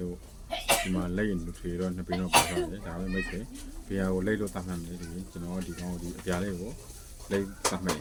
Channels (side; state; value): both; identical; correlation 1.00